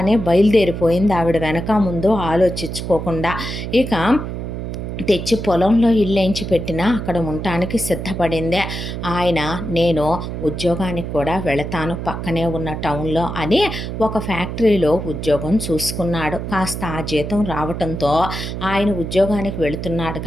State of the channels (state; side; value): noise; right; hum, 6 dB below the sound